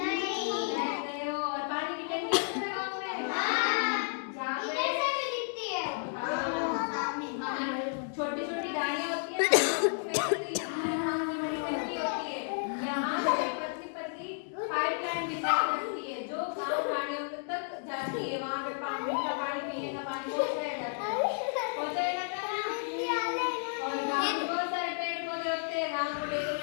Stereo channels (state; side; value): silent; right; digital silence